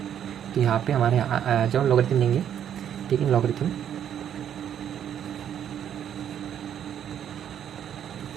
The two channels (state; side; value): quieter; left; 9.6 dB